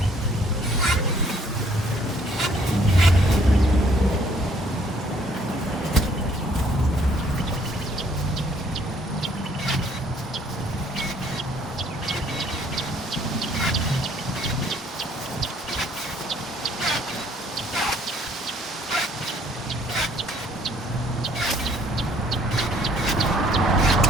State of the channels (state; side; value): normal; both; correlation 0.62